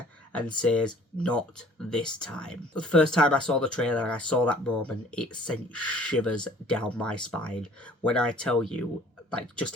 and says, not this time. The first time I saw the trailer and I saw that moment, it sent shivers down my spine. When I tell you, like, just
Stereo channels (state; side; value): normal; both; correlation 0.53